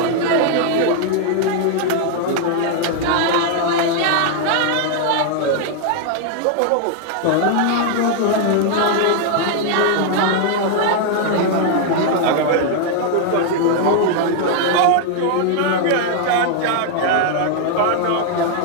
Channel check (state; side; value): different; both; correlation 0.00